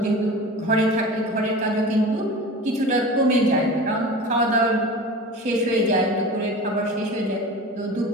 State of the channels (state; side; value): normal; both; correlation 0.34